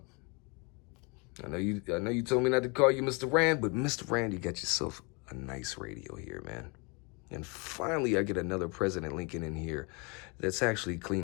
I know you told me not to call you Mr. Rand, but Mr. Rand, you got yourself a nice radio here, man. And finally, I get another President Lincoln in here that's actually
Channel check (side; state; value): right; quieter; 31.2 dB